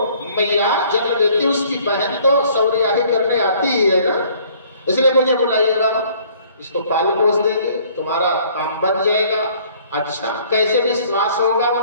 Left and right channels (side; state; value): both; inverted; correlation -0.58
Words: मैया जन्म देती उसकी बहन तो सौरियाही करने आती ही है ना, इसलिए मुझे बुलाइएगा, इसको पाल पोस देंगे, तुम्हारा काम बन जाएगा। अच्छा, कैसे विश्वास होगा